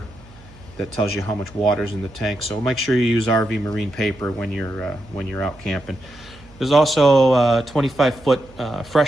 that tells you how much water's in the tank. So make sure you use RV marine paper when you're out camping. There's also a 25-foot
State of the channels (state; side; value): noise; right; hum, 23 dB below the sound